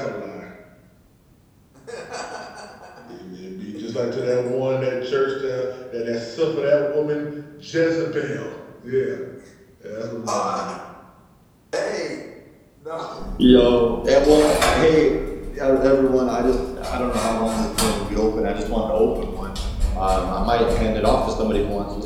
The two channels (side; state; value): both; identical; correlation 1.00